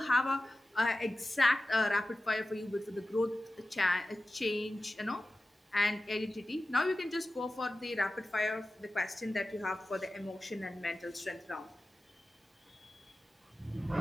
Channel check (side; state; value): both; normal; correlation 0.95